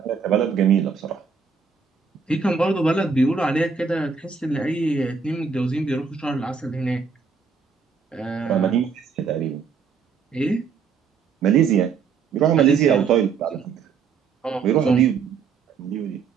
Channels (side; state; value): left; quieter; 5.7 dB